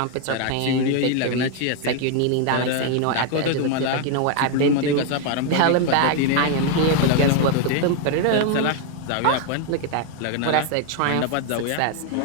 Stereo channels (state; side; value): different; both; correlation 0.01